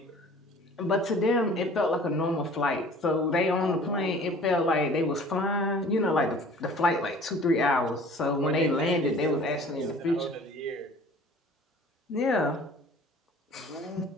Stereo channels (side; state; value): both; normal; correlation 0.48